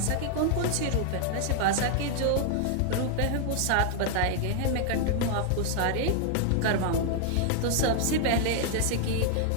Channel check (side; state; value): both; different; correlation -0.01